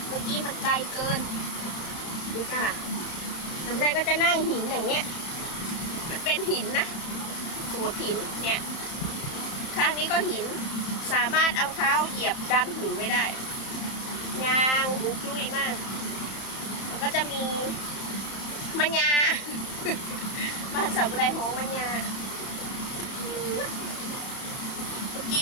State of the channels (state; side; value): late; right; 31 ms